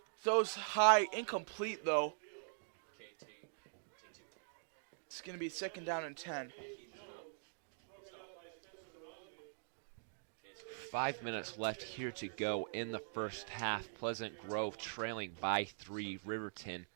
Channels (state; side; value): silent; left; digital silence